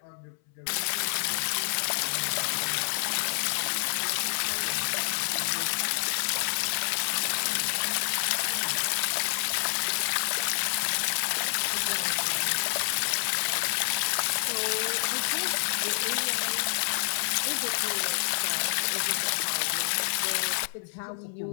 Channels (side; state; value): right; silent; 59 dB below the other